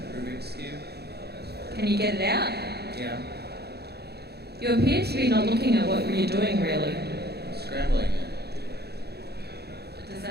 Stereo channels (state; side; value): late; left; 0.47 ms